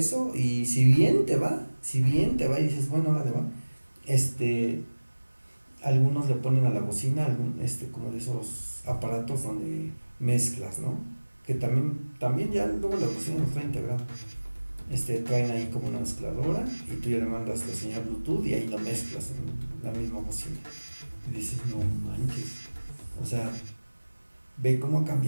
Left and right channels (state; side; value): inverted; both; correlation -1.00